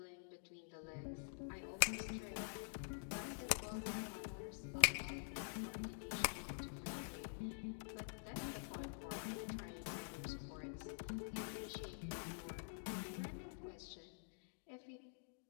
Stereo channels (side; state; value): right; silent; digital silence